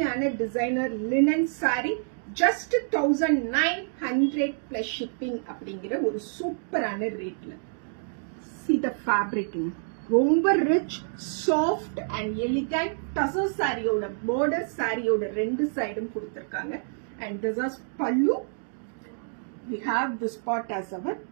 ஆன designer linen sorry just 1900 plus shipping அப்படிங்கிற ஒரு சூப்பரான ரேட்ல. See the fabric. ரொம்ப rich soft and elegant tussar சாரியோட border சாரியோட ரெண்டு சைடும் கொடுத்திருக்காங்க. and this is pallu. We have this part as our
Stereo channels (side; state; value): left; silent; digital silence